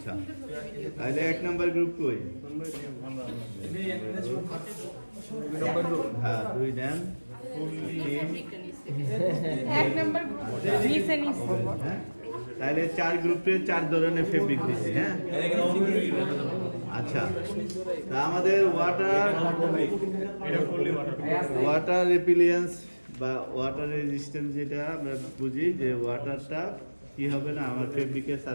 তাহলে 1 number group কই? হ্যাঁ 2 দেন এক নাম্বার নিচে নিচে তাহলে 4 গ্রুপে 4 ধরনের ফেব্রিক দিছি। হ্যাঁ আচ্ছা তা আমাদের ওয়াটার রিপিলিয়েন্স বা ওয়াটার রেজিস্ট্যান্স যেটা আমরা বুঝি যে ওয়াটারটা কি হবে না আমার ফেব্রিকের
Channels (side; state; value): both; inverted; correlation -1.00